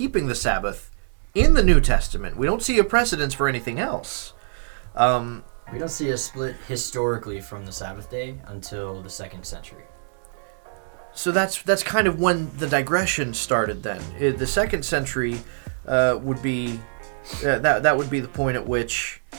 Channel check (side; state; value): left; silent; 63 dB below the other